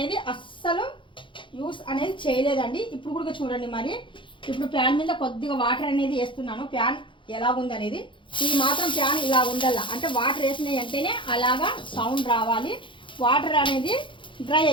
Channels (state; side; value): late; right; 0.24 ms